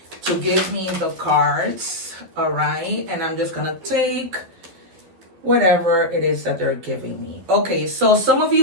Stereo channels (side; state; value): left; late; 12 ms